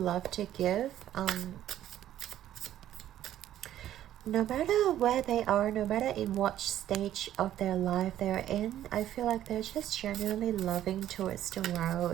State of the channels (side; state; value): left; quieter; 12.1 dB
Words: to give. No matter where they are, no matter in what stage of their life they're in, I feel like they're just genuinely loving towards the